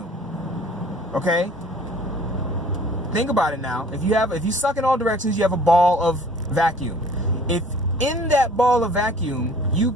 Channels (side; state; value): both; normal; correlation 0.52